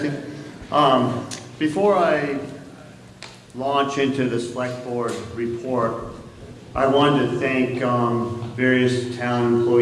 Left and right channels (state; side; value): identical; both; correlation 1.00